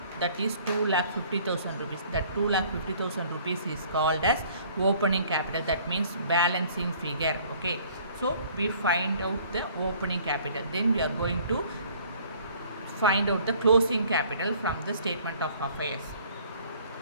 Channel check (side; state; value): both; inverted; correlation -0.55